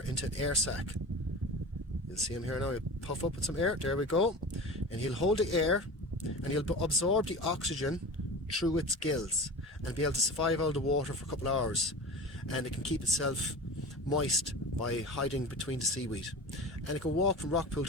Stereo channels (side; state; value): both; normal; correlation 0.33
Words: into an air sac. You'll see him here now. He'll puff up with some air. There we go. And he'll hold the air and he'll absorb the oxygen through its gills and be able to survive out of the water for a couple of hours. And it can keep itself moist by hiding between the seaweed. And it can walk from rock pool